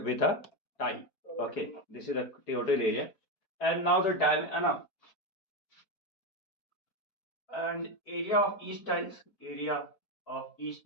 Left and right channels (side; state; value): right; late; 4.5 ms